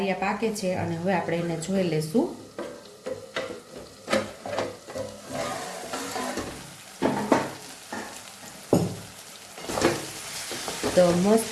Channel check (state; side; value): identical; both; correlation 1.00